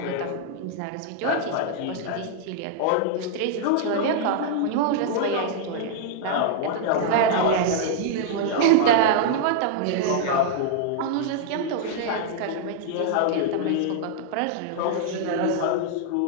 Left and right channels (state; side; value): different; both; correlation -0.01